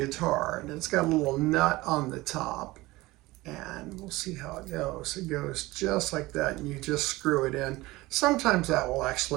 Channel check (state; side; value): quieter; left; 19.9 dB